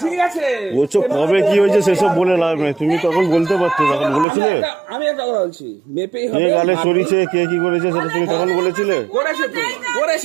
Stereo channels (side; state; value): left; drops out; at 4.2 s